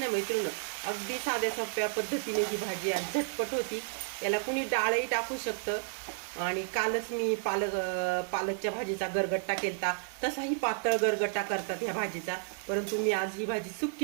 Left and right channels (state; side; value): silent; left; digital silence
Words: मैत्रिणी. अगदी साध्या सोप्या पद्धतीने ही भाजी आज झटपट होती. याला कुणी डाळही टाकू शकतं. आणि कालच मी पालकच्या भाजीचा गरगट्टा केलता. तसाही पातळ गरगट्टा करतात ह्या भाजीचा. परंतु मी आज ही भाजी